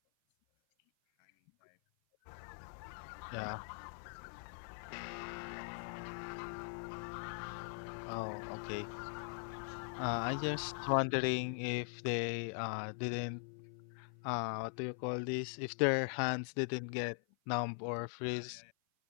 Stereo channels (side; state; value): right; silent; 50 dB below the other